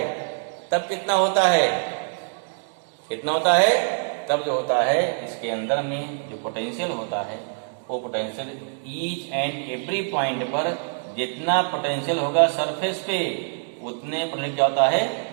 तब कितना होता है, कितना होता है, तब जो होता है इसके अंदर में जो पोटेंशियल होता है, वो potential each and every point पर जितना पोटेंशियल होगा सरफेस पे, उतने पर क्या होता है,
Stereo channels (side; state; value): left; silent; digital silence